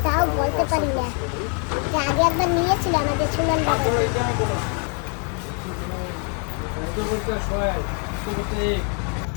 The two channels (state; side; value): quieter; right; 39.8 dB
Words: তাও বলতে পারি না। যে আগে একবার নিয়েছিল আমাদের সুমন বাবা। এটা আমি বলো। এটা বলতে হয়, এটা বলতে